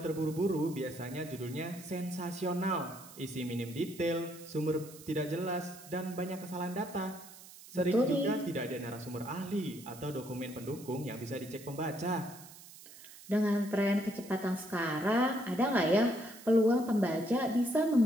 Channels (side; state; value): right; noise; hiss, 18 dB below the sound